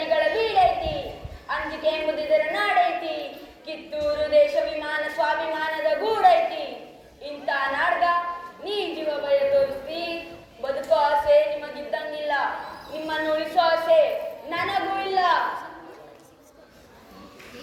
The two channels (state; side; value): identical; both; correlation 1.00